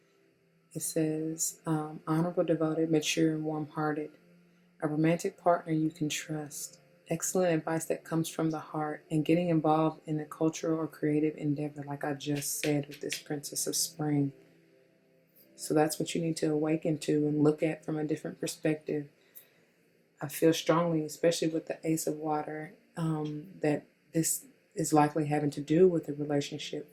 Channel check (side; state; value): both; identical; correlation 1.00